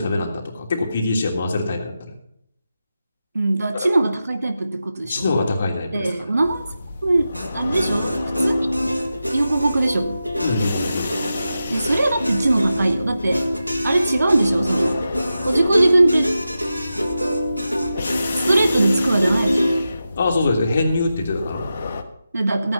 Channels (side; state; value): both; inverted; correlation -0.91